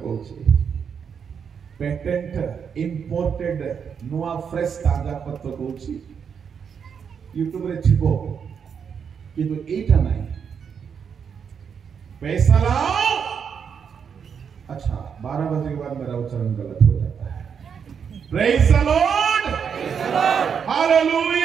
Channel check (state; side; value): quieter; left; 7.0 dB